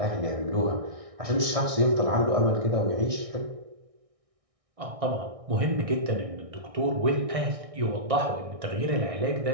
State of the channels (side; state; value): left; late; 1.6 ms